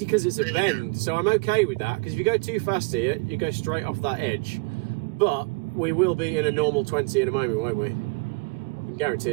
because it's a bend, so I'm okay with that, because if you go too fast here, you go straight off that edge. But we will be in a normal 20 in a moment, won't we? I can guarantee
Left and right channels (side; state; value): left; quieter; 28.7 dB